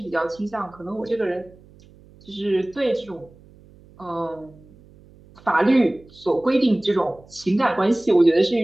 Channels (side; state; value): right; noise; hum, 25 dB below the sound